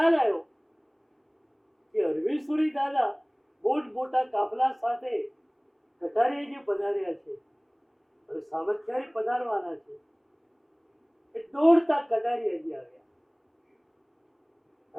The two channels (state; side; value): identical; both; correlation 1.00